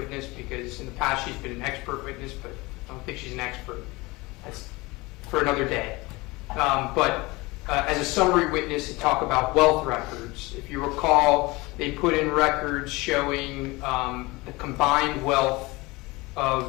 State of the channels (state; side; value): quieter; right; 23.0 dB